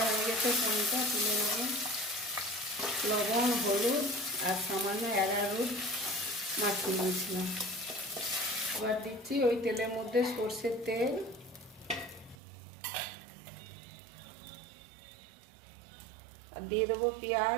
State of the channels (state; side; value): drops out; left; at 12.4 s